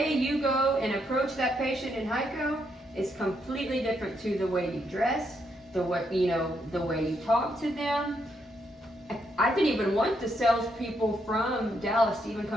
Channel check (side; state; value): both; normal; correlation 0.77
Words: you go and approach that patient in Hico is completely different to the way you dress, the way you talk to them. I didn't even want the salespeople from Dallas to even